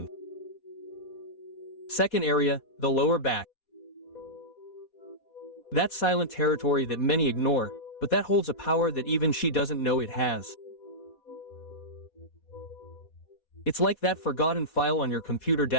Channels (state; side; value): late; right; 4.2 ms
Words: Second area, the lower back. That silent territory that many ignore, but that holds a power that even she doesn't know it has. It's like that forgotten file on your computer